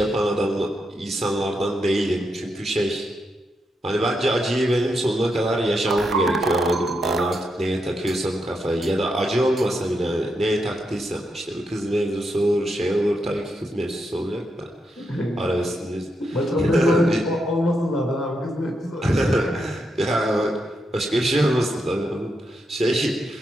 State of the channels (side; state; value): both; normal; correlation 0.83